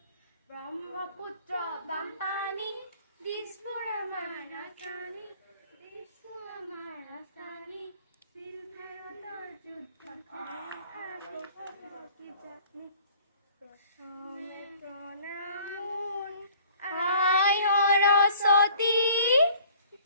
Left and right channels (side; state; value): both; inverted; correlation -0.53